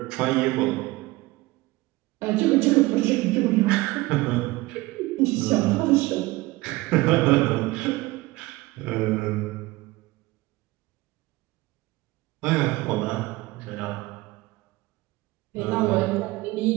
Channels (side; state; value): left; quieter; 20.3 dB